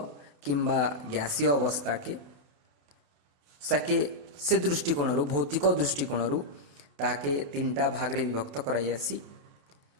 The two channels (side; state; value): left; late; 28 ms